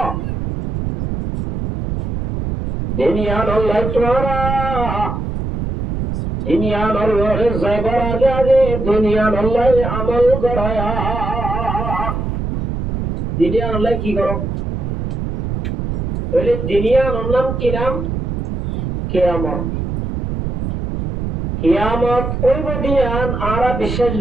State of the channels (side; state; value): right; noise; rumble, 3 dB below the sound